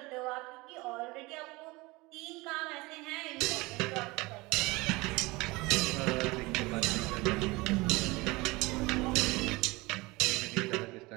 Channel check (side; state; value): left; quieter; 23.0 dB